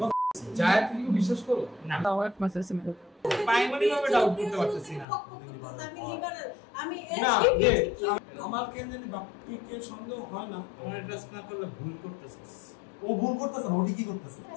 যায়, তুই বিশ্বাস করো না? দাওয়াত মাসে সিম্পল প্রাইমারি ভাবে ডাউট করতে পারতেছি না। আমি লিবারেল, আমি আমার কেন জানি বাপকে কে সন্দেহ হয় না, আমার ট্রাস্ট না করলে ভুল করতেছিস। ও ভুল করতেছে, ওটি কি করতেছে?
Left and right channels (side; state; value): right; drops out; at 5.1 s